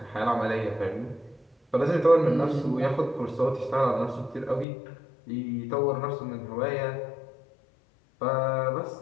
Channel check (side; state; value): right; drops out; at 4.7 s